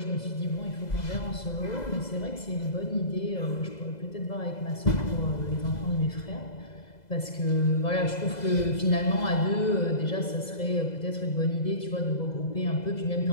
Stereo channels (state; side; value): late; right; 2.0 ms